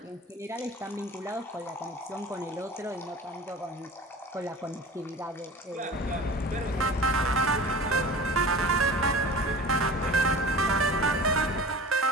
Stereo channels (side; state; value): both; normal; correlation 0.38